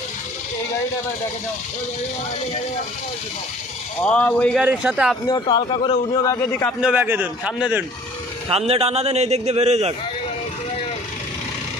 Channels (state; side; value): normal; both; correlation 0.51